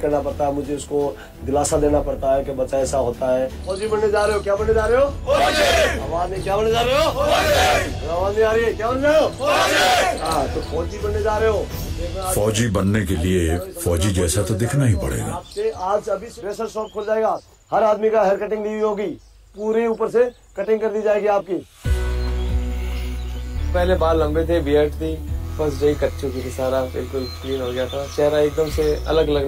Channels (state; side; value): identical; both; correlation 1.00